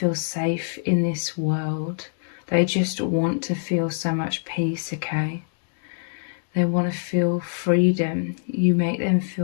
safe in this world. They just want to feel so much peace, okay? They want to feel freedom. You make them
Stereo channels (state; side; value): silent; right; 63 dB below the other